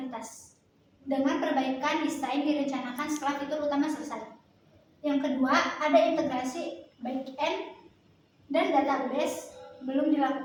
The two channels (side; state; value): both; identical; correlation 1.00